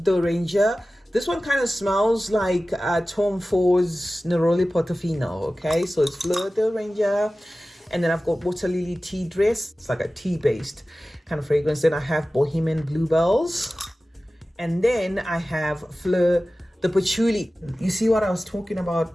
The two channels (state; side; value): normal; both; correlation 0.96